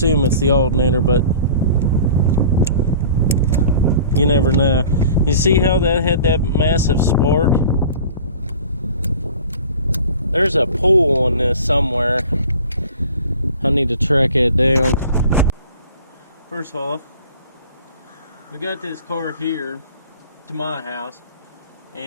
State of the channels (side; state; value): both; inverted; correlation -0.44